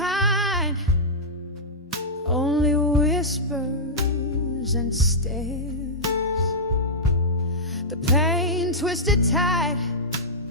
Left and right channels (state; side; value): normal; both; correlation -0.12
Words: only whispers and stares. The pain twisted tight